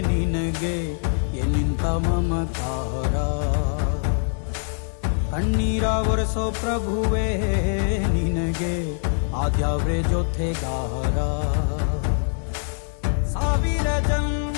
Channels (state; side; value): silent; right; 63 dB below the other